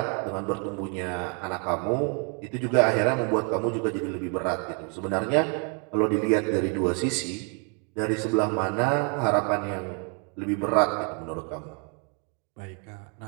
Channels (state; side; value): quieter; left; 37.7 dB